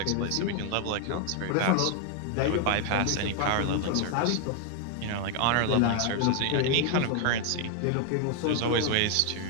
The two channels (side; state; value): both; different; correlation 0.00